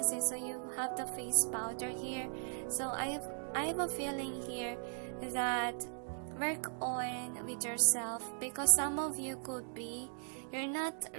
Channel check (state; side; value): silent; left; digital silence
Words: So you have the face powder here. So I have a feeling here that work on with yourself, because some of you could be, you're not